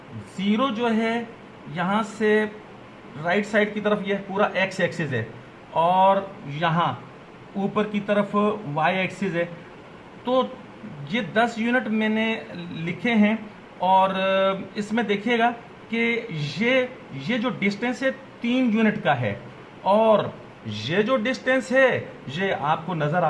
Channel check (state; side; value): identical; both; correlation 1.00